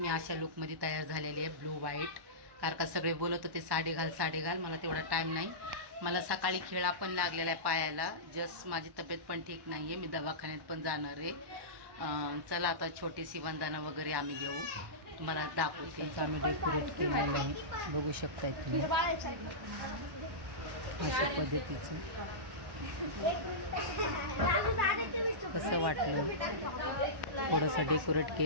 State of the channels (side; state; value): left; late; 1.1 ms